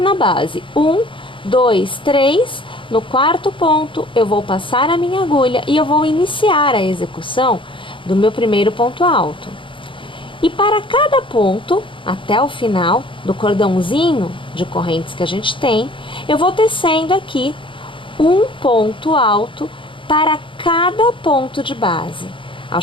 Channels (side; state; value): right; late; 0.25 ms